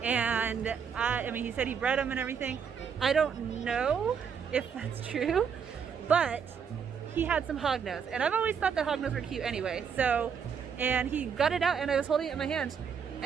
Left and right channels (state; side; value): quieter; left; 6.9 dB